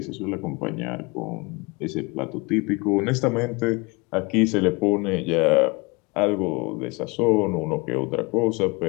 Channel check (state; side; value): quieter; right; 26.9 dB